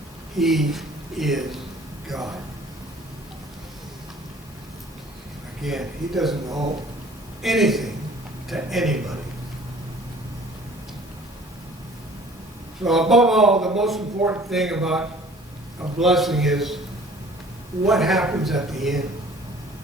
He is God. Again, He doesn't owe anything to anybody. So above all, the most important thing about a blessing is what happens at the end.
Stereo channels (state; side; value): normal; both; correlation 0.51